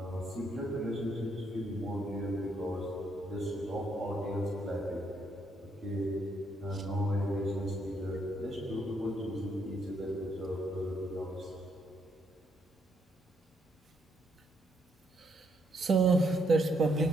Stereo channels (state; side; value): normal; both; correlation 0.74